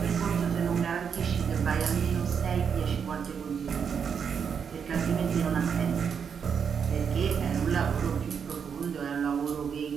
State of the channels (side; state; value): left; quieter; 6.9 dB